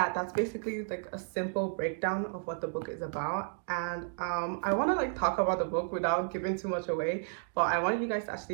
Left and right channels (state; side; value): silent; left; digital silence